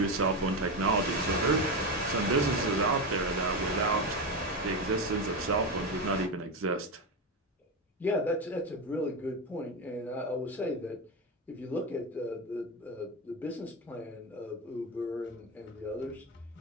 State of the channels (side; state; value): both; normal; correlation 0.15